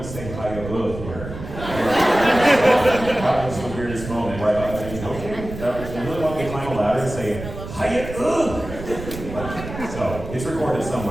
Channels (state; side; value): noise; right; rumble, 10 dB below the sound